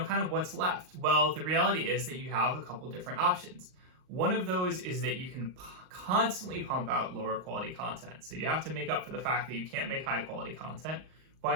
kind of what's left? Well, the reality is that you have a couple different options. One of those is that you can constantly pump out lower quality content. So you have to make up for the fact that you can't make high quality content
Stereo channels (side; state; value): left; late; 38 ms